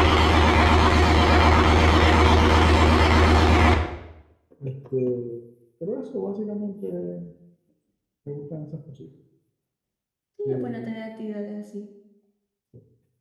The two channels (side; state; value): both; identical; correlation 1.00